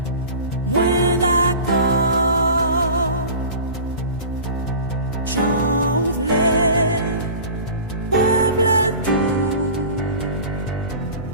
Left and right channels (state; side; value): inverted; both; correlation -0.37